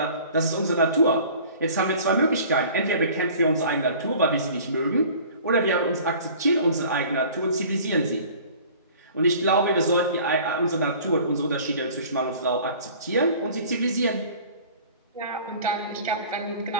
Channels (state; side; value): inverted; both; correlation -0.46